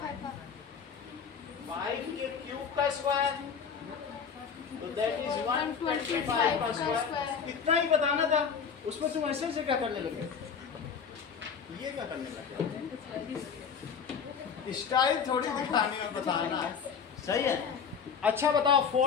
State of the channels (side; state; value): right; quieter; 6.7 dB